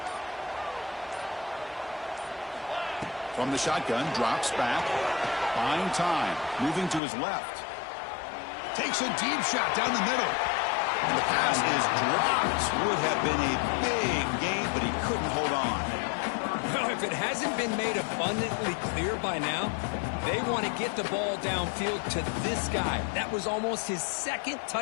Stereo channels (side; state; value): right; drops out; at 7.0 s